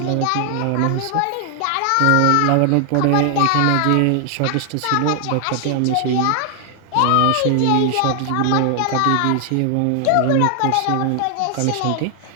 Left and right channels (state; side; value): different; both; correlation 0.00